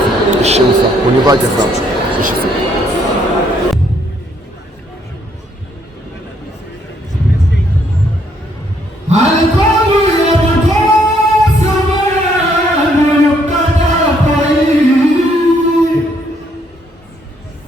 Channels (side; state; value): both; normal; correlation 0.69